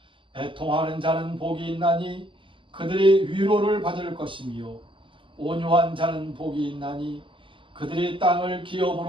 애통하는 자는 복이 있나니 그들이 위로를 받을 것이며 온유한 자는 복이 있나니 그들이 땅을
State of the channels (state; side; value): late; left; 0.25 ms